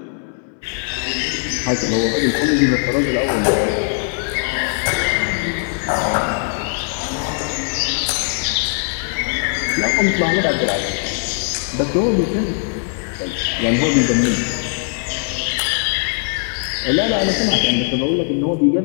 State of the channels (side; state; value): right; silent; 66 dB below the other